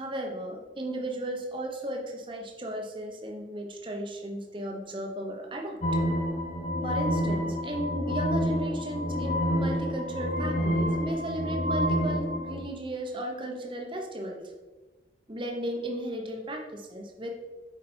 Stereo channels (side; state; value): both; normal; correlation 0.52